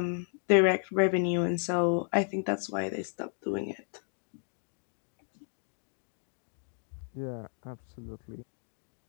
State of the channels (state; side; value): silent; right; 56 dB below the other